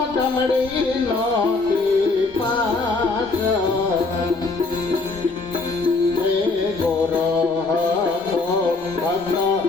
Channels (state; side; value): quieter; right; 3.7 dB